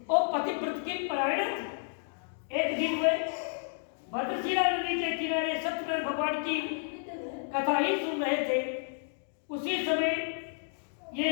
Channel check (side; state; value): right; silent; digital silence